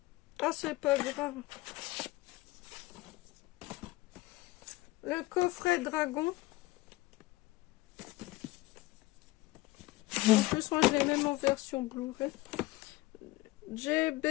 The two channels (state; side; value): quieter; right; 19.6 dB